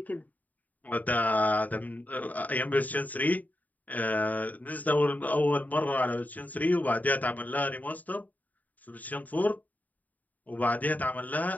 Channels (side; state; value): right; late; 0.078 ms